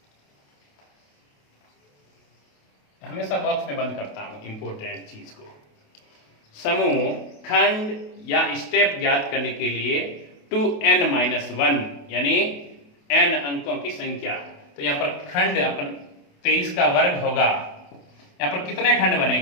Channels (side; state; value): right; late; 28 ms